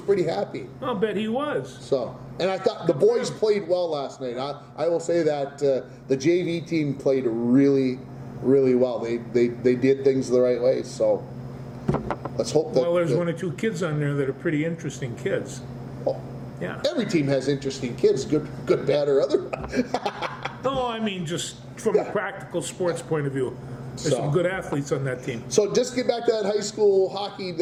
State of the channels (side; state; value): both; identical; correlation 1.00